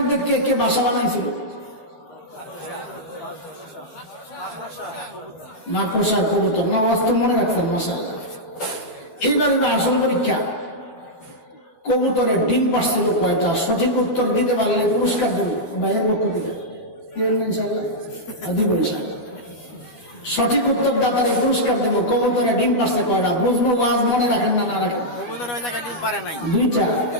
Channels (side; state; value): right; late; 12 ms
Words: কে কে বাসা বানাইছিল? মাকড়সা, কবুতর। না, ওয়াজ তো মনে রাখছেন, মাশাআল্লাহ। এইবার আসল পরীক্ষা, কবুতরের ডিম পারছিল কয়টা? সঠিক উত্তর দিতে পারলে পুরস্কার দেব ভাইয়ের পক্ষ থেকে, ইনশাআল্লাহ দিব ইনশাআল্লাহ। সঠিক উত্তর দাতারে পুরস্কার দেব। কবুতরের ডিম পারছে কয়টা? বুঝবো, ওয়াজ মনে রাখেন না, না রাখেন? 2টা,